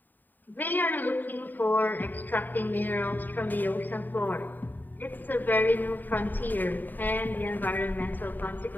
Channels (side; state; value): right; late; 0.089 ms